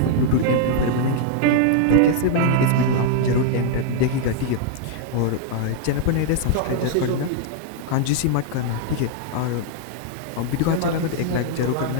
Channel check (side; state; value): both; different; correlation -0.01